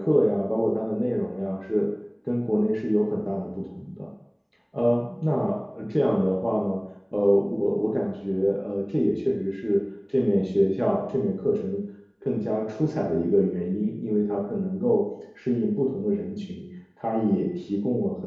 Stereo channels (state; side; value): identical; both; correlation 1.00